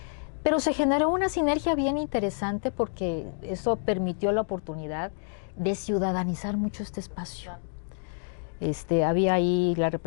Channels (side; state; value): right; silent; digital silence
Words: pero se generó una sinergia bien interesante porque eso permitió la oportunidad de ciudadanizar mucho este espacio. Había ahí la